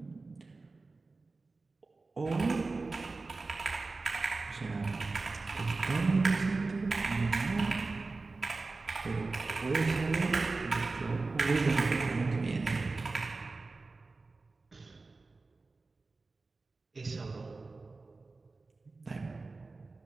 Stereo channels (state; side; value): quieter; left; 3.7 dB